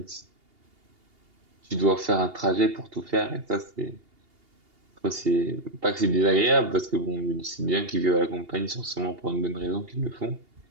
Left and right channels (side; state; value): left; late; 2.8 ms